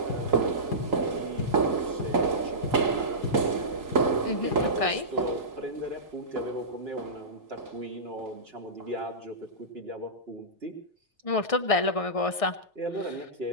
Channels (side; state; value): right; late; 1.6 ms